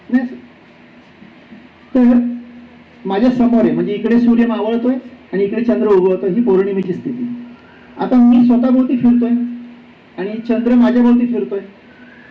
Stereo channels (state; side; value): identical; both; correlation 1.00